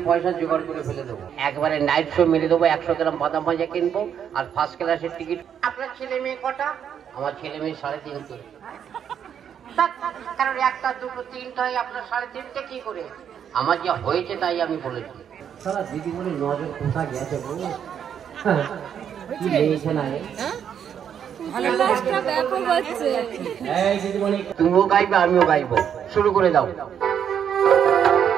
পয়সা জোগাড় করে ফেলে দেবো, একবারে নাইট শো মেরে দেবো, 100 গ্রাম বাদাম ভাজা কিনবো, আর ফার্স্ট ক্লাসের টিকিট। আপনার ছেলে মেয়ে কটা? আমার ছেলে মেয়ে 3.5। কারণ 1টা 2টো 3টা হয়, আপনার 3.5 কি করে? আমার যা হয়েছে তাই আমি বলেছি। সারা দিদি বলে নজর কোথা গেছে বলো, কি লেগেছে না উল্লাসটা ব্যাপক হচ্ছে। তুমিও গাইবে, আমিও গাইবো, শুরু করে দাও।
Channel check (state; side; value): quieter; left; 8.5 dB